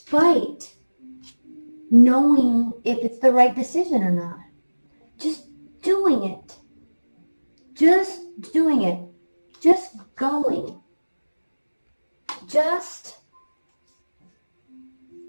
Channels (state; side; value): inverted; both; correlation -1.00